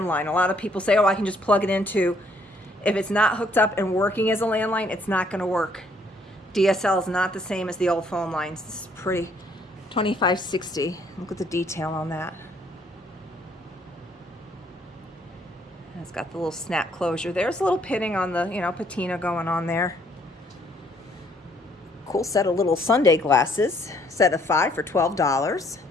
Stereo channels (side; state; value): both; normal; correlation 0.66